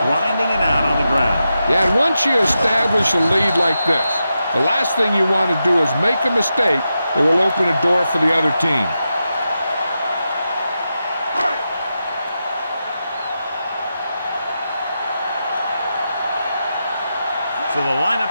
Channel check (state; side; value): inverted; both; correlation -0.88